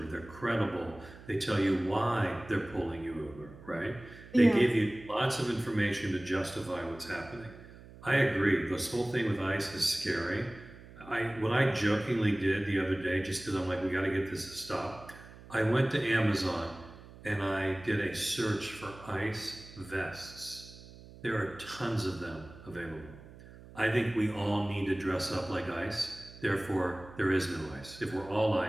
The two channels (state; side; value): noise; right; hum, 18 dB below the sound